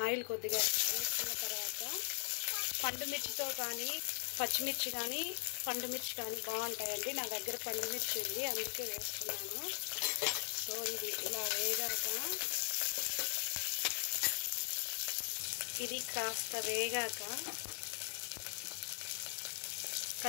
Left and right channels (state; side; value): silent; right; digital silence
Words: ఆయిల్ కొద్దిగా వేసుకున్న తర్వాత పండుమిర్చితో కానీ పచ్చిమిర్చి కానీ పండుమిర్చి కానీ బాగుంటాయండి. నా దగ్గర పండుమిర్చి ఉంది, అందుకే వేసుకున్నాను. సో ఇది ఇలా వేగాక ఇది కాస్త వేగాక